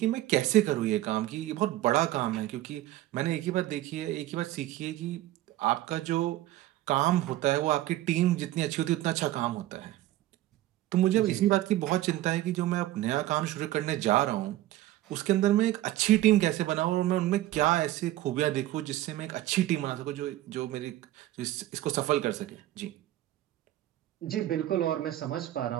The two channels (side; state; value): left; quieter; 15.0 dB